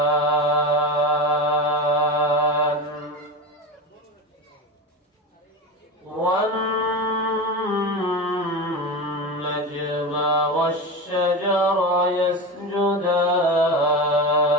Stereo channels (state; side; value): normal; both; correlation 0.23